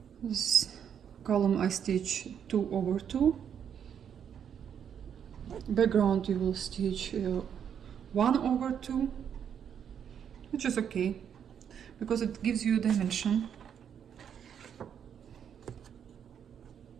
This column I stitch 2 over 2. Background you will stitch 1 over 2, which is okay because it gives you a dimension.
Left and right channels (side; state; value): left; quieter; 8.3 dB